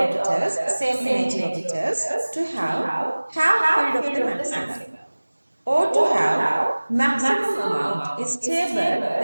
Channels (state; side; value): inverted; both; correlation -1.00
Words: same energy orbitals, to have half filled of the maximum, or to have maximum amount is stable